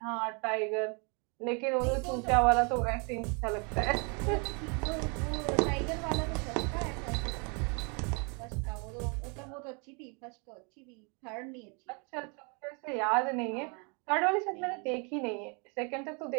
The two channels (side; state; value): left; quieter; 34.8 dB